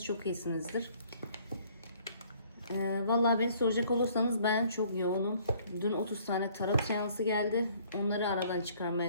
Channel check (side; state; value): both; inverted; correlation -0.59